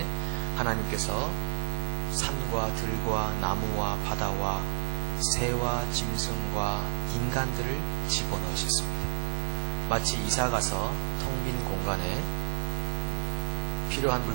하나님께서 산과 들과 나무와 바다와 새와 짐승과 인간들을 집어넣으셨습니다. 마치 이사가서 텅 빈 공간에 필요한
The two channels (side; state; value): left; silent; 58 dB below the other